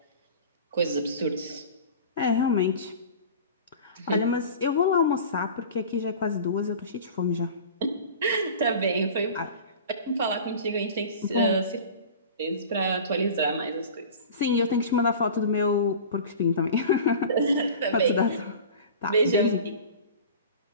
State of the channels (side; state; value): both; inverted; correlation -0.38